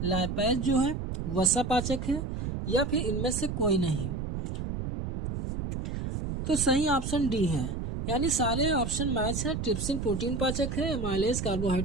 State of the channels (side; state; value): right; noise; rumble, 4 dB below the sound